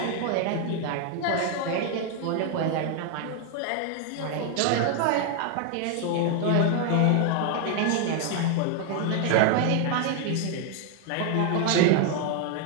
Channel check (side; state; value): both; different; correlation 0.00